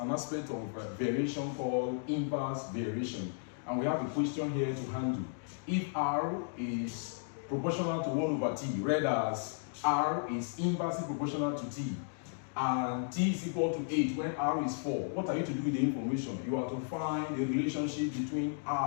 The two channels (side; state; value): right; silent; digital silence